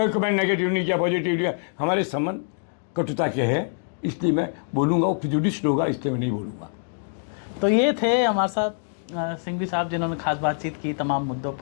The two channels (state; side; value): silent; right; digital silence